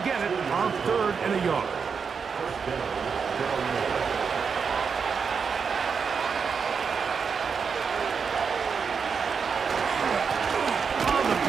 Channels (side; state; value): left; quieter; 5.9 dB